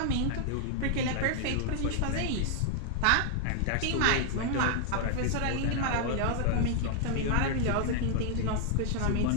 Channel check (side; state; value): both; different; correlation 0.00